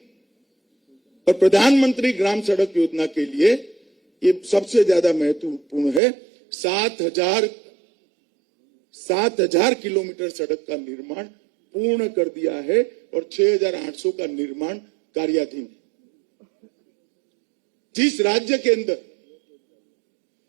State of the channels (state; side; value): drops out; left; at 6.0 s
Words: और प्रधानमंत्री ग्राम सड़क योजना के लिए ये सबसे ज्यादा महत्वपूर्ण है। 7,000 किलोमीटर सड़क का निर्माण पूर्ण कर दिया है और 6,800 का निर्माण कार्याधीन है। जिस राज्य के अंदर